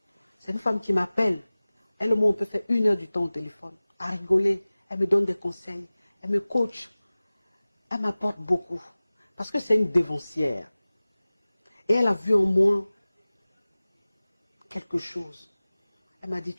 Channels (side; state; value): both; inverted; correlation -0.98